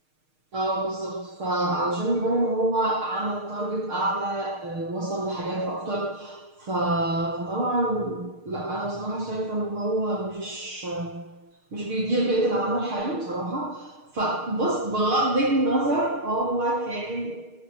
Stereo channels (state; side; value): late; left; 6.5 ms